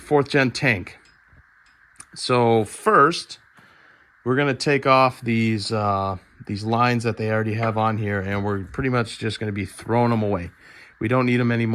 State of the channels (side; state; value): both; identical; correlation 1.00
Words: gen tank. So first, we're going to take off these lines that they already have on here, and we're pretty much just going to be throwing them away. We don't need them